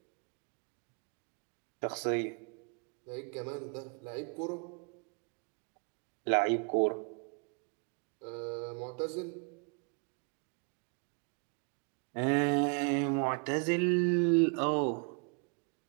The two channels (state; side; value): quieter; left; 37.9 dB